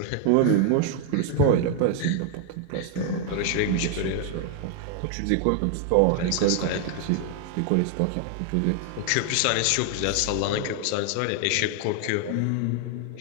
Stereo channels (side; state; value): both; different; correlation 0.00